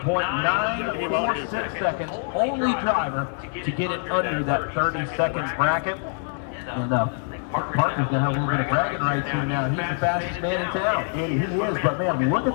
seconds. Only driver to get it under that 30 seconds bracket. And Parker's going to have a little bit of bragging rights here now. He's the fastest man in town. And he is, but man, look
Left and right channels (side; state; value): right; silent; 62 dB below the other